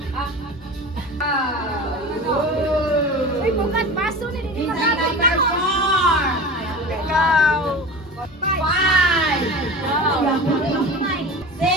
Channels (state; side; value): normal; both; correlation 0.32